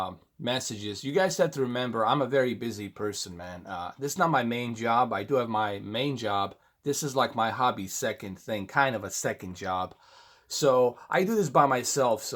messages. You guys have to remember, I'm a very busy person, man. This is not my main job. I do have my main job. This is like my hobby second thing, kind of a second job. So I do this by myself.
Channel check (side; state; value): both; identical; correlation 1.00